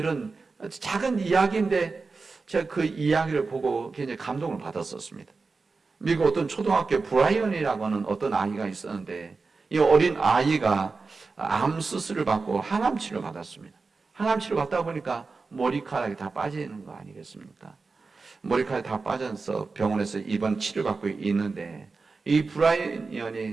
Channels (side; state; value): left; quieter; 4.2 dB